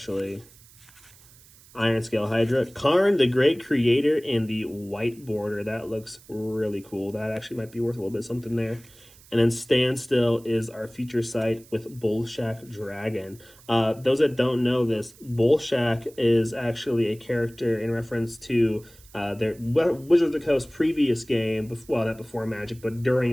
Iron Scale Hydra. Karn, the Great Creator, in the white border. That looks really cool. That actually might be worth a little bit of something there. And then Standstill is our feature site with Bullshack Dragon. Those that don't know this, Bullshack is actually a character in reference to their Wizards of the Coast previous game, well, not before Magic, but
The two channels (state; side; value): noise; right; hiss, 25 dB below the sound